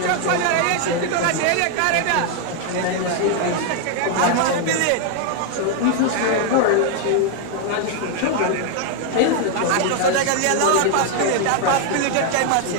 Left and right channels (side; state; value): both; different; correlation 0.00